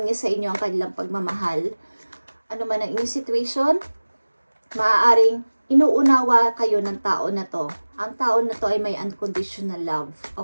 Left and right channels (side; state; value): both; inverted; correlation -1.00